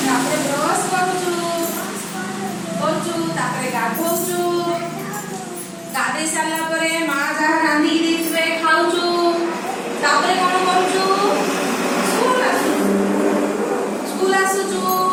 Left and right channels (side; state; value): both; identical; correlation 1.00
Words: ତାପରେ ବ୍ରଶ କରୁଛୁ ତାପରେ ଗାଧଉଛୁ ଗାଧେଇ ସାରିଲା ପରେ ମା ଯାହା ରାନ୍ଧିକି ଦେଇଥିବେ ଖାଉଛୁ ତାପରେ କଣ କରୁଛୁ? ସ୍କୁଲ ଆସୁଛୁ